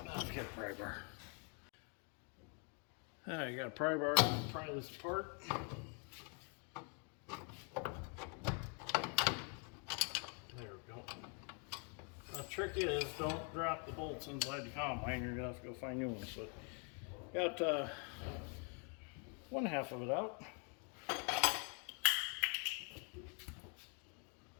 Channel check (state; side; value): quieter; right; 38.7 dB